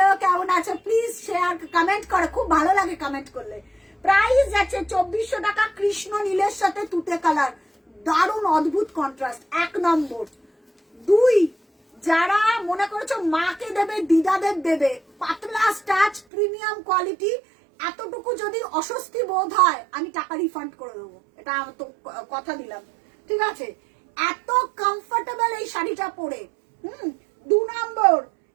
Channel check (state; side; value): drops out; left; at 16.2 s